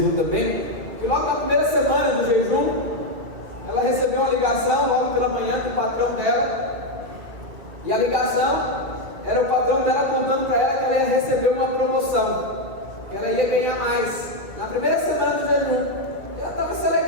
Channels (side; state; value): left; late; 2.5 ms